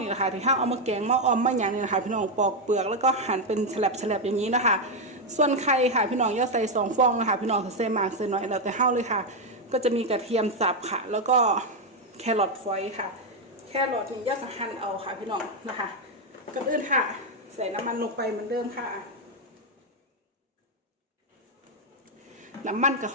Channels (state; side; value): normal; both; correlation 0.04